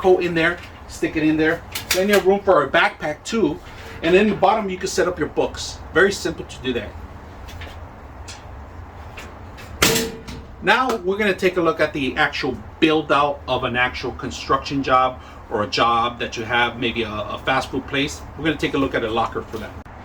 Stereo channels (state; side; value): identical; both; correlation 1.00